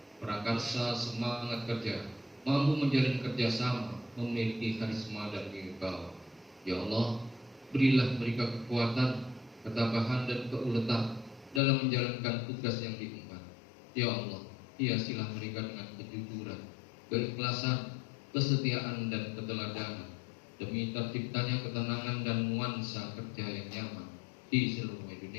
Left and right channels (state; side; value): drops out; right; at 11.6 s